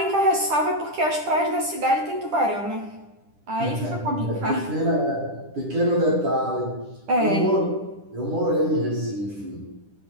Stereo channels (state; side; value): late; left; 10 ms